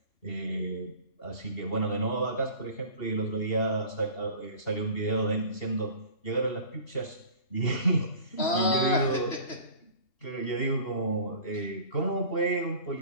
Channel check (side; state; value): right; late; 2.7 ms